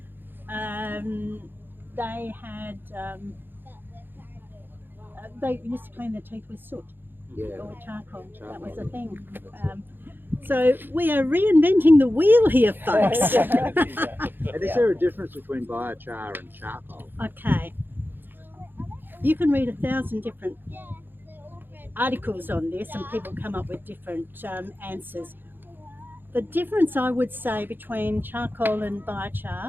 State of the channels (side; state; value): left; late; 0.096 ms